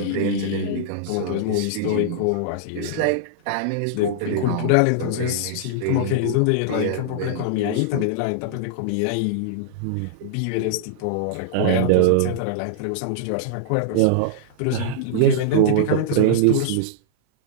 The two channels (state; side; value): different; both; correlation -0.02